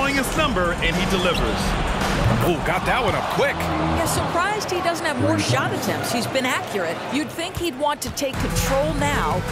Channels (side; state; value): both; identical; correlation 1.00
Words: his number, and he delivers. Oh, got that one up quick. Yeah, surprised he doesn't have more shot attempts. He's been accurate. You'd think he'd want to take control now